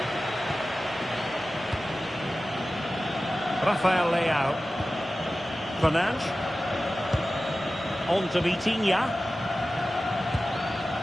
Rafael Leao. Fernandes. On to Vitinha.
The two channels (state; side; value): normal; both; correlation 0.95